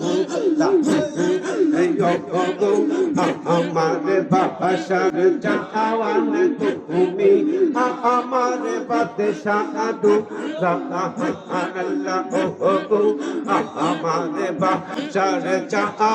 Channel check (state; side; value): identical; both; correlation 1.00